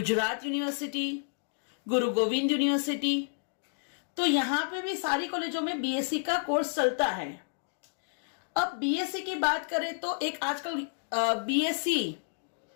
university, गुरु गोविंद यूनिवर्सिटी। तो यहां पे भी सारी कॉलेजों में बीएससी का कोर्स चलता है। अब बीएससी की बात करें तो एक आजकल बीएससी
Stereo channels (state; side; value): silent; right; digital silence